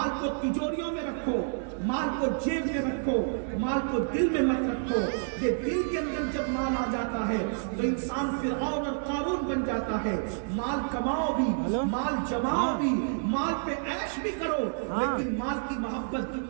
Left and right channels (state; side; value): silent; left; digital silence